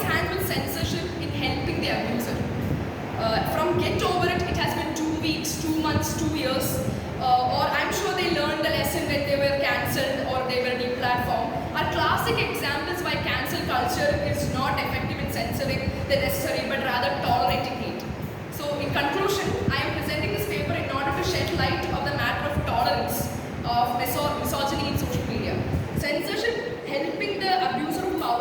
hands with censorship in helping the abuser. From get over it, it has been 2 weeks, 2 months, 2 years, or I'm sure they learned the lesson when they were cancelled or they were deplatformed, are classic examples why cancel culture is not effective in censoring the necessary, but rather tolerating hate. So in conclusion, I am presenting this paper in order to shed light of the matter of tolerance of misogyny in social media. Censorship helping the abuse of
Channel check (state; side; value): identical; both; correlation 1.00